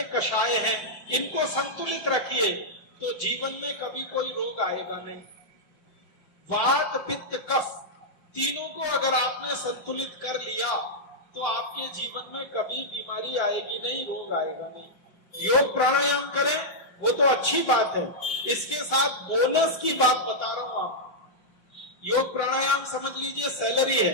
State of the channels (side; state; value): right; late; 5.6 ms